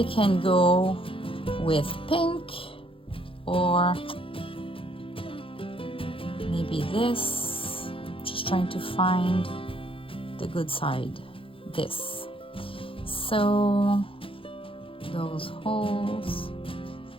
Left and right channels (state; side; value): late; right; 0.26 ms